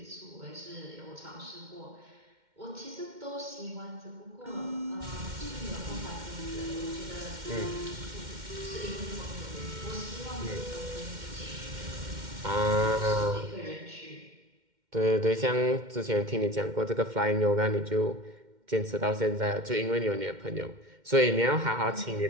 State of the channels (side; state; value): left; late; 2.1 ms